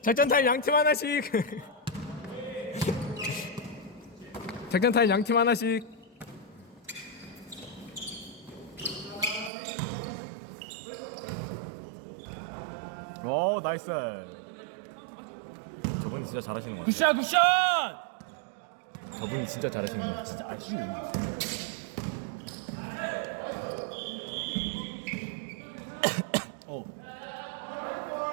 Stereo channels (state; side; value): drops out; left; at 9.5 s